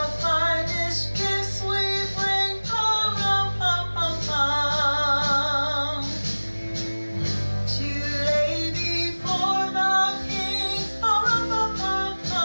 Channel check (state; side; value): inverted; both; correlation -1.00